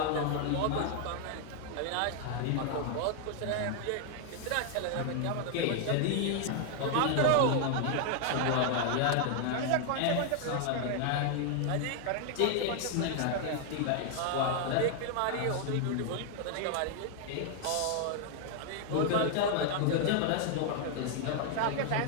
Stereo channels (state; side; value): different; both; correlation 0.00